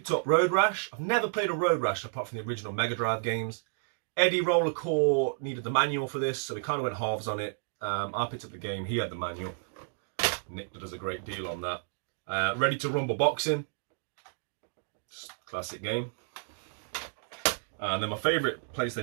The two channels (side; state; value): left; silent; digital silence